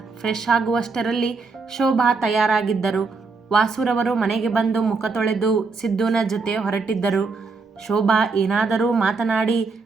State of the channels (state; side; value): quieter; left; 4.3 dB